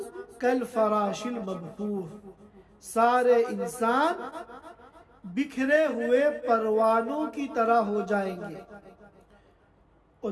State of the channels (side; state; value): both; identical; correlation 1.00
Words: کالفراش المبثوث، سارے انسان بکھرے ہوئے پروانوں کی طرح ہو جائیں گے۔ اور